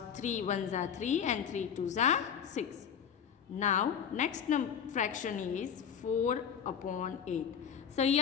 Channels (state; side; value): quieter; right; 7.9 dB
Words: 3 ones are 3 and 3 twos are 6. Now next fraction is 4 upon 8. So